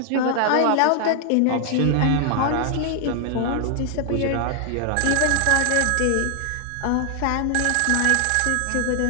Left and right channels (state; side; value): different; both; correlation 0.00